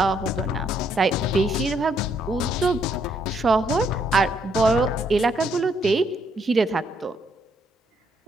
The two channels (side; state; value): both; normal; correlation 0.71